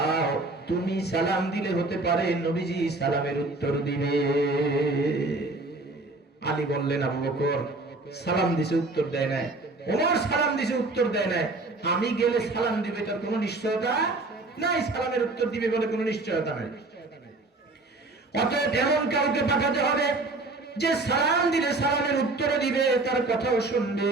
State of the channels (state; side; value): quieter; left; 3.2 dB